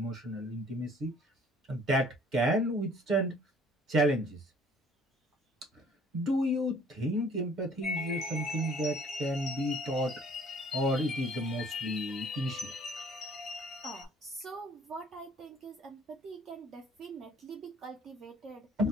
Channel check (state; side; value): normal; both; correlation 0.56